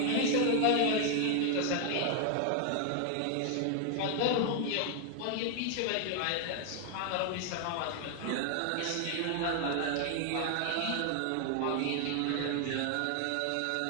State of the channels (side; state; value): both; different; correlation 0.00